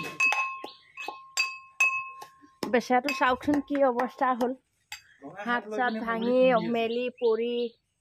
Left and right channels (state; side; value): identical; both; correlation 1.00